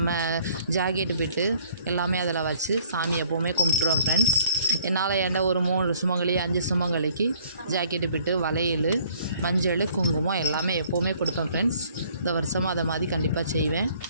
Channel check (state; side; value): inverted; both; correlation -0.59